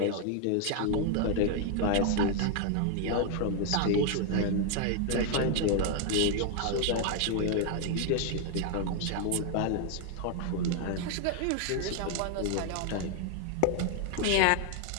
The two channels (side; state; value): both; different; correlation 0.00